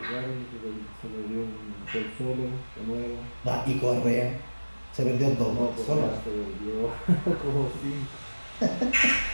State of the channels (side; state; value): both; inverted; correlation -1.00